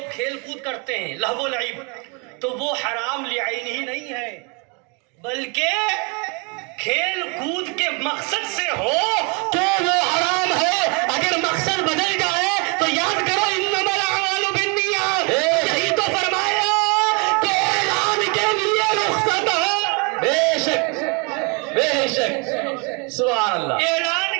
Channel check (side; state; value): left; quieter; 32.8 dB